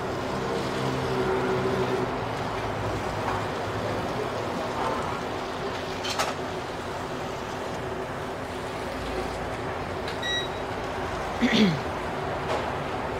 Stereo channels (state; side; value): identical; both; correlation 1.00